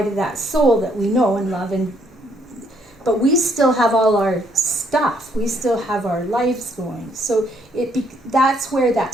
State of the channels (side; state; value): both; normal; correlation 0.69